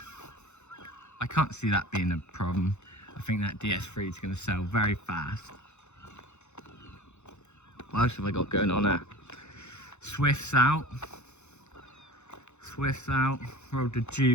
I can't see that being a problem. I think that DS3 is going to sell very fast. What else have I got going on there? Swift's out. Swift's out. Rolled the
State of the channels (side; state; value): right; late; 0.82 ms